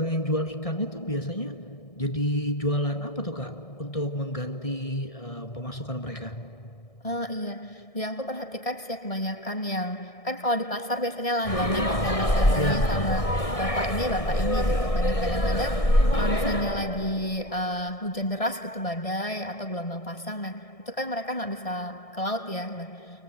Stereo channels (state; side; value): late; right; 1.6 ms